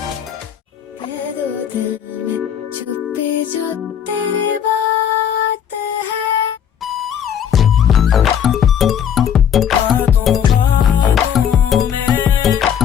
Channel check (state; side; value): quieter; right; 8.8 dB